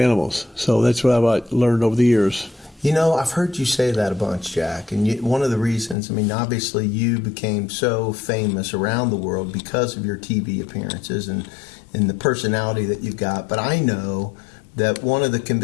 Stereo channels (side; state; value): right; drops out; at 6.0 s